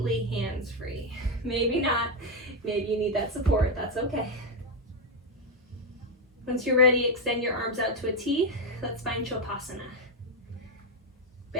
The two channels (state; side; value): normal; both; correlation 0.05